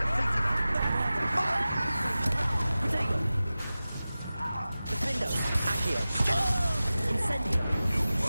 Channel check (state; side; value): inverted; both; correlation -0.96